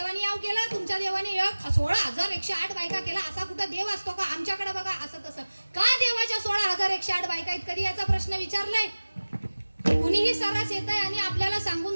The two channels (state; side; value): inverted; both; correlation -1.00